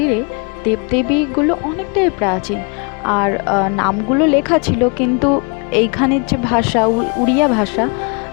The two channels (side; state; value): right; quieter; 34.3 dB